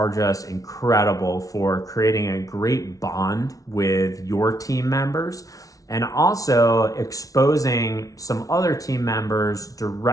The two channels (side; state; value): right; late; 0.17 ms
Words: just incredible for creating a great bond with your team members, and also exposing some other team members